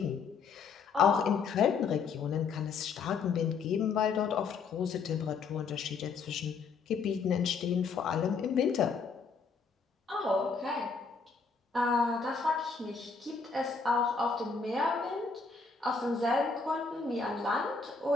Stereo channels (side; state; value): right; quieter; 5.1 dB